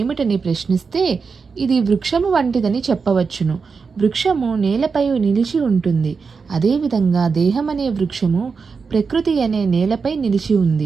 ప్రశ్నిస్తే ఇది వృక్షము వంటిదని చెప్పవచ్చును. వృక్షము నేలపై నిలిచి ఉంటుంది. అదేవిధంగా దేహమనే వృక్షము ప్రకృతి అనే నేలపై నిలిచి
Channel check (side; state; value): left; quieter; 5.1 dB